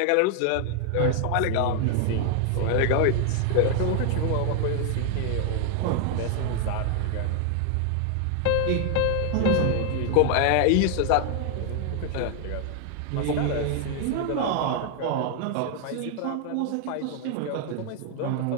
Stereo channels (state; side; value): different; both; correlation 0.00